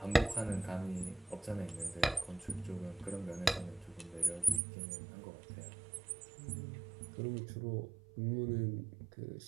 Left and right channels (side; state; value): left; drops out; at 4.6 s